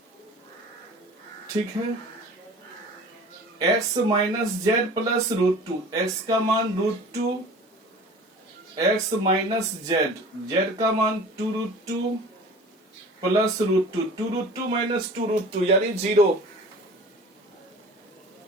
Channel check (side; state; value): both; normal; correlation 0.42